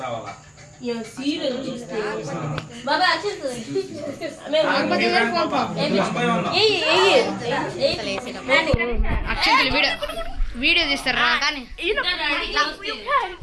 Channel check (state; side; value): identical; both; correlation 1.00